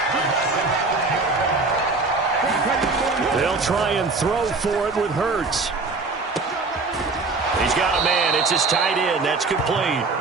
They'll try and throw for it with Hurts. He's got a man. It's his tight end. That's complete.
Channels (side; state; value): left; quieter; 3.8 dB